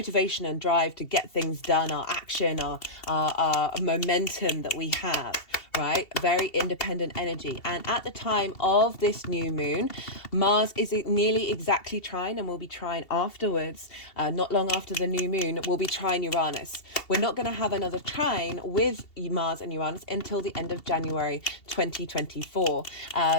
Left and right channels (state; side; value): late; right; 2.7 ms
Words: and drive to get things done, our action, our momentum that we have, right? Very independent energy. And at the time of this new moon, Mars is nearly exactly trine, and will be trine afterwards, not long after the new moon, will be trine Uranus. We're not going to have another trine with Mars and Uranus until the end of January 2024,